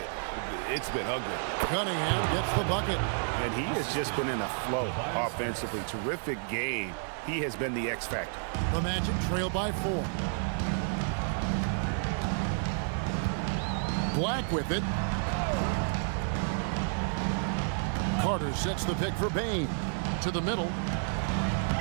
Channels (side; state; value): left; silent; digital silence